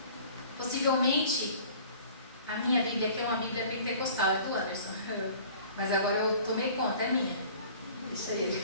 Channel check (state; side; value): inverted; both; correlation -0.48